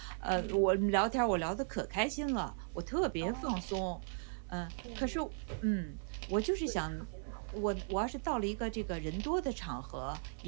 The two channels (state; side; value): silent; left; digital silence